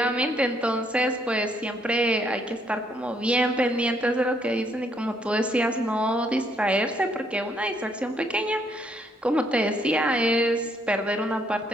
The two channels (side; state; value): both; normal; correlation 0.70